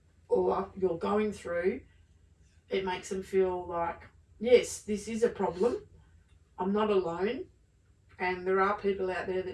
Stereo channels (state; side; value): identical; both; correlation 1.00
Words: or you're going through, it makes them feel like, yes, this is a problem. I'm not alone. And there are people out there